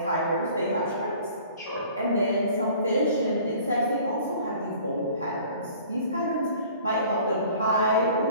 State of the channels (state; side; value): inverted; both; correlation -0.50